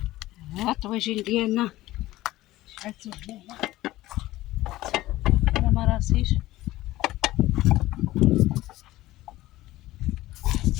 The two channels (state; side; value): quieter; right; 16.8 dB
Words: الطواجين ديالنا شعلتو هنايا. انا ما راسيش.